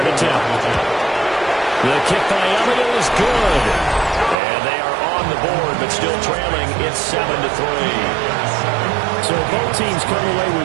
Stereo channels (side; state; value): left; drops out; at 4.4 s